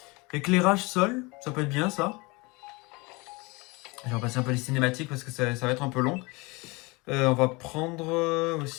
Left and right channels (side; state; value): right; quieter; 25.6 dB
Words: Éclairage sol, ça peut être bien ça. Je vais repasser un peu les cinématiques parce que ça va être un peu long. On va prendre